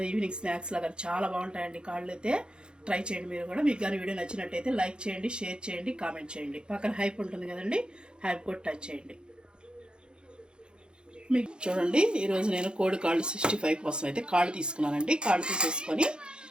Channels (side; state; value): left; late; 0.050 ms